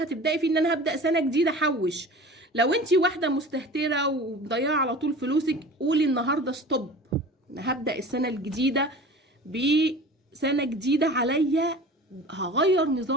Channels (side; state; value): both; normal; correlation 0.39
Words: فيه ان انا هبدا سنه جديده احوش. لو انتي واحده مستهتره ومضيعه على طول فلوسك، قولي النهارده ستوب، انا هبدا السنه الجديده بسنه جديده عليا، هغير